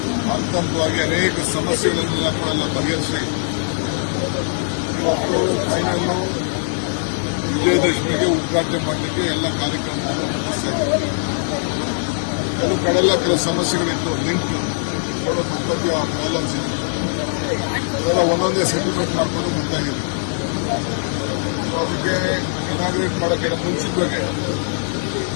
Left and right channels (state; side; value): silent; right; digital silence